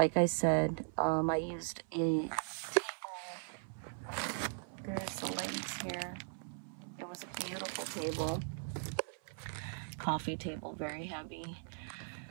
I said, I used a table. There's the legs here. It was a beautiful table. Coffee table, very heavy.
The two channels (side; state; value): left; silent; 52 dB below the other